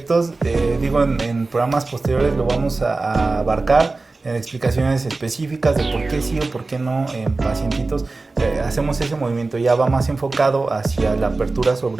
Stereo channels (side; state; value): left; quieter; 3.5 dB